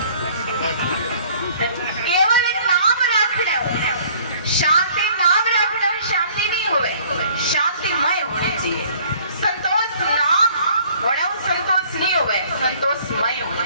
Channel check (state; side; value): inverted; both; correlation -0.56